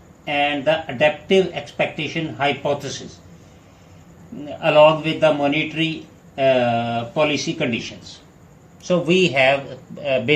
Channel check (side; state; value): both; identical; correlation 1.00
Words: and the adaptive expectation hypothesis, along with the monetary policy conditions. So we have